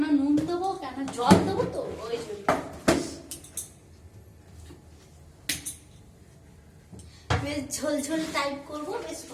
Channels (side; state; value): both; identical; correlation 1.00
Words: নুন দেবো, কেন জল দেবো তো ওই জন্য। বেশ ঝোলঝোল টাইপ করবো, বেশ